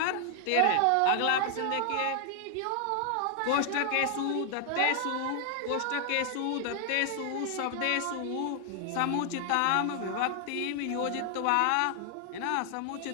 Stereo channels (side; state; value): both; different; correlation 0.00